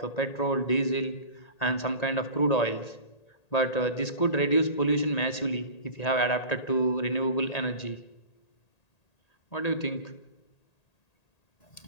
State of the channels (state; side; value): late; right; 1.8 ms